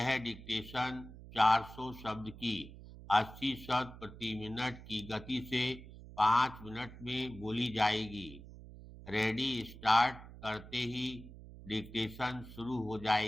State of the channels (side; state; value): right; noise; hum, 16 dB below the sound